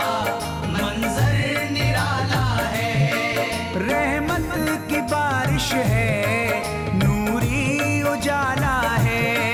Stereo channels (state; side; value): identical; both; correlation 1.00